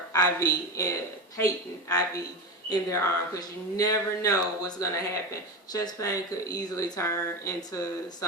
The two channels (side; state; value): both; normal; correlation 0.20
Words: IV, and patent IV in their arm, because you never know what's going to happen. Chest pain could easily turn into